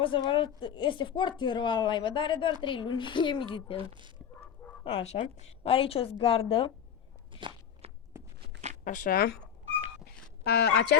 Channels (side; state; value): right; quieter; 8.5 dB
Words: să vă arăt, este foarte rău live, dar are doar 3 luni, e militel. Așa, are aici o zgardă. Așa.